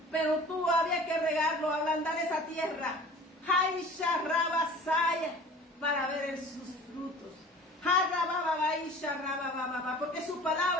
pero tú había que regarlo, ablandar esa tierra. Para ver sus frutos. Porque su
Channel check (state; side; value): normal; both; correlation 0.43